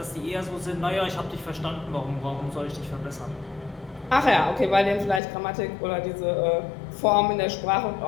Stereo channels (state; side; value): drops out; right; at 5.2 s